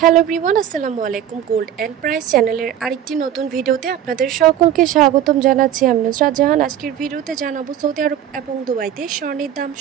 Hello everyone, আসসালামু আলাইকুম। Gold and price চ্যানেলের আরেকটি নতুন ভিডিওতে আপনাদের সকলকে স্বাগতম জানাচ্ছি। আমি নুসরাত জাহান। আজকের ভিডিওতে জানাবো সৌদি আরব এবং দুবাইতে স্বর্ণের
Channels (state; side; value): quieter; left; 10.5 dB